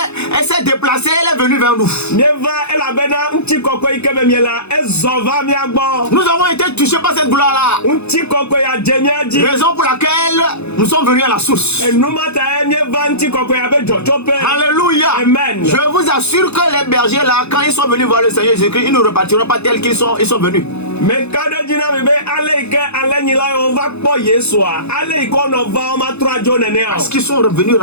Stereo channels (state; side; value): late; right; 0.80 ms